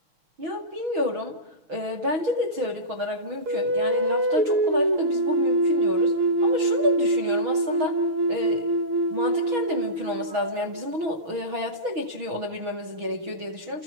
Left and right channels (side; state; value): left; late; 6.3 ms